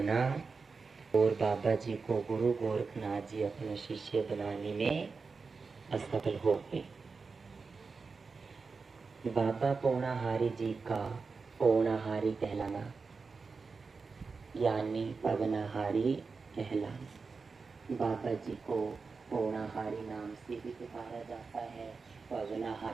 और बाबा जी को गुरु गोरखनाथ जी अपने शिष्य बनाने में असफल हो गए। बाबा पौनाहारी जी का पौनाहारी कहलाना यानी पवनाहारी कहलाना। बाबा जी को पौनाहारी नाम से भी पुकारा जाता है,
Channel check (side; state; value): left; quieter; 4.6 dB